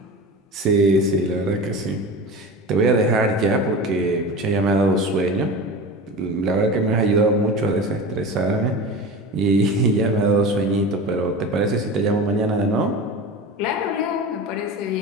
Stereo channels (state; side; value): normal; both; correlation 0.31